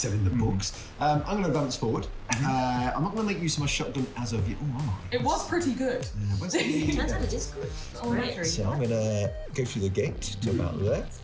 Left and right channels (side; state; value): both; identical; correlation 1.00